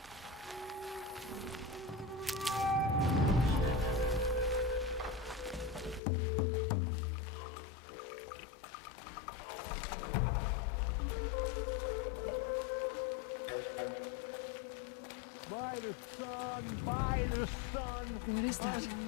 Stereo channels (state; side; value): drops out; right; at 6.0 s